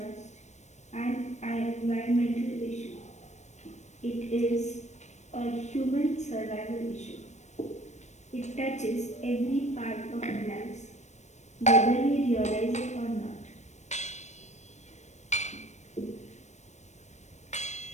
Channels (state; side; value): late; right; 0.34 ms